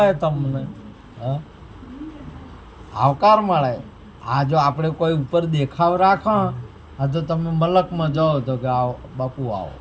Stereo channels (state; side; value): identical; both; correlation 1.00